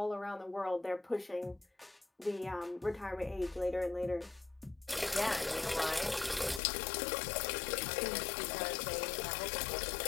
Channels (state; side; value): drops out; right; at 6.6 s